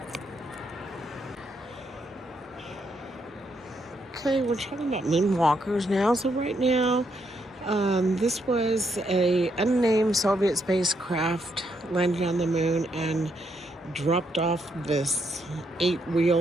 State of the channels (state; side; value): normal; both; correlation 0.76